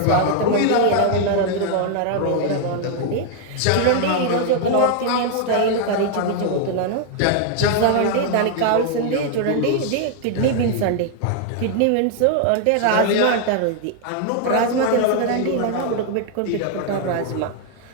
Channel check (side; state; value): both; different; correlation 0.00